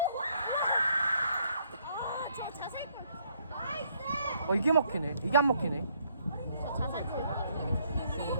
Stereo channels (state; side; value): inverted; both; correlation -0.69